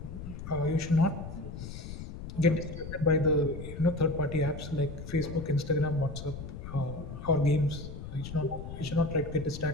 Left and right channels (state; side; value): noise; left; rumble, 10 dB below the sound